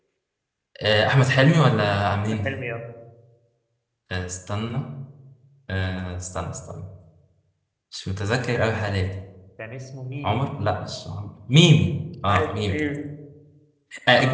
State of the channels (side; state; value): both; identical; correlation 1.00